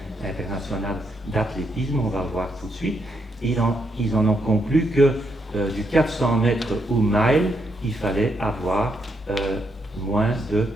internationale d'athlétisme, on va le voir tout de suite. Ils en ont conclu que du 400 mètres ou mile, il fallait avoir moins de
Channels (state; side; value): normal; both; correlation 0.78